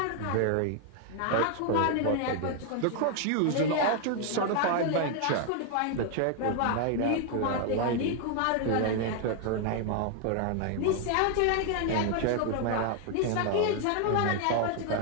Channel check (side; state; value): both; different; correlation 0.00